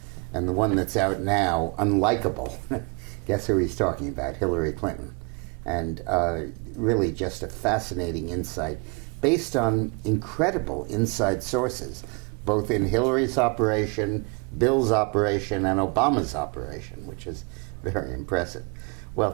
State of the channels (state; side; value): quieter; left; 32.4 dB